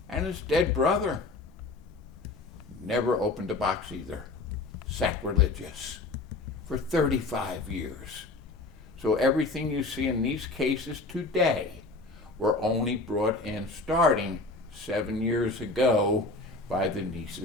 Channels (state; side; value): quieter; right; 3.3 dB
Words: and his dead brother, never opened a box either. Sacrilegious. For 35 years. So everything you see in these cases today were only brought in starting 7 years ago by the